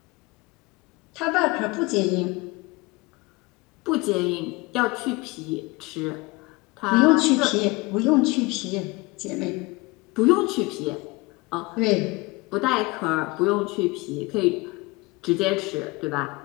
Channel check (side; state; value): right; quieter; 24.2 dB